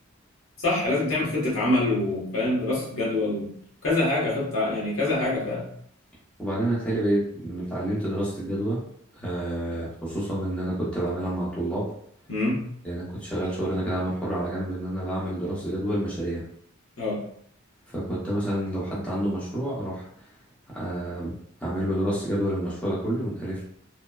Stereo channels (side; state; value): both; normal; correlation 0.58